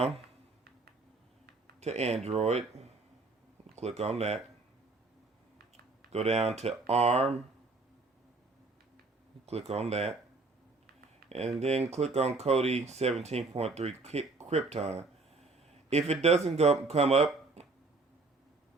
to Android. Click on that. Go down to ARM. Click on that. And then click on Kodi 17.3 Krypton. If it doesn't come up,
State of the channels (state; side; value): quieter; left; 3.6 dB